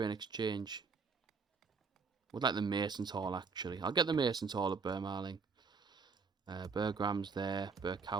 exchange. Would like the Mason's Hall actually. I'll get the Mason's Hall at Bermarling. Bergram's there.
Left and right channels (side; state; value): left; quieter; 5.0 dB